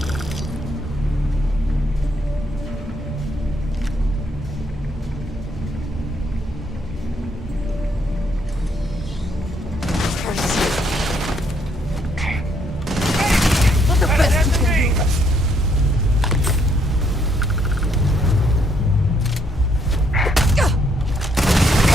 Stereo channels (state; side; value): normal; both; correlation 0.70